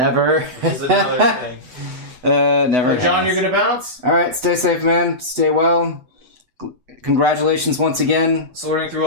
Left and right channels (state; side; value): late; left; 7.9 ms